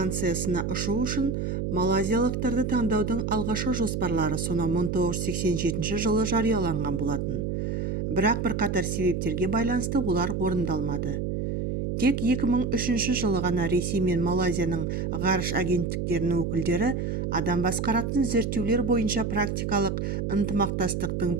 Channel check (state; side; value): noise; right; hum, 1 dB below the sound